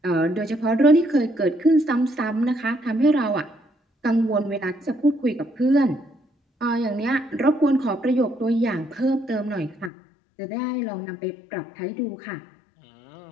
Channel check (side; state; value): right; drops out; at 9.9 s